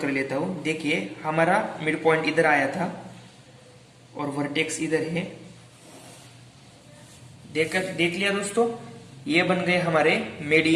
लेता हूं। देखिए हमारा मिड पॉइंट इधर आया था और वर्टेक्स इधर है। देख लिया दोस्तों, ये बन गए हमारे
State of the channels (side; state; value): both; identical; correlation 1.00